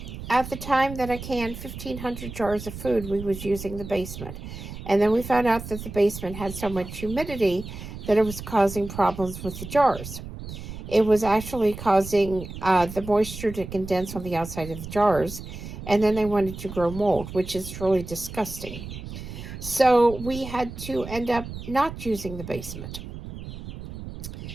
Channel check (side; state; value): right; noise; rumble, 10 dB below the sound